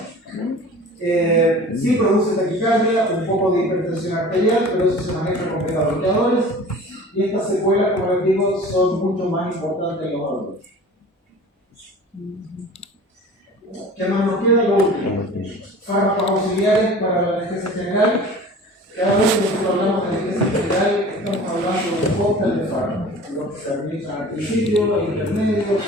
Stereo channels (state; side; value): normal; both; correlation 0.42